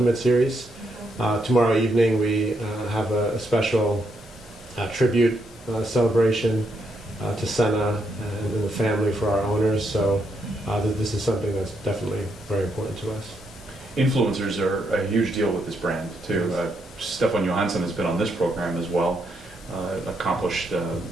Series. Tomorrow evening, we have a special tribute celebration to Senna and the family for our owners. So this is something that's definitely very important to us. Influencers are a huge deal with this brand too. Stefan Johansson has been on this program as well. Accomplished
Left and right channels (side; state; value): both; normal; correlation 0.78